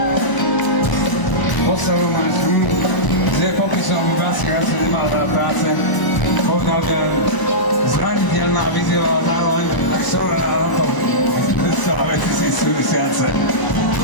Postavu máš, kde popisom by Basík asi nemal veľa práce. Povedal, že zraniteľná vyzývala zároveň tak sorá na to. Celá veci si súvisiace.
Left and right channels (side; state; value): right; late; 1.0 ms